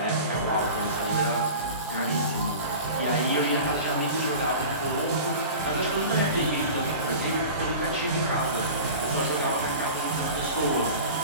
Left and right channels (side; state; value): both; inverted; correlation -0.35